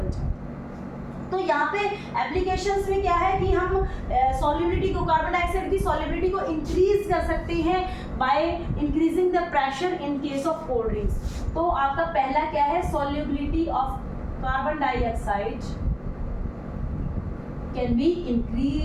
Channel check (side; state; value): both; identical; correlation 1.00